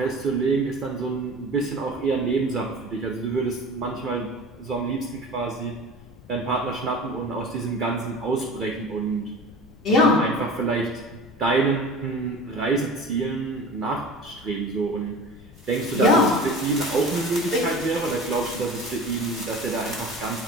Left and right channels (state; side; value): noise; left; rumble, 22 dB below the sound